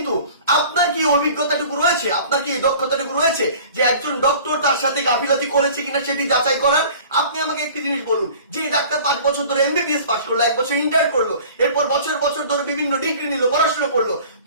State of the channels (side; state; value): both; inverted; correlation -0.45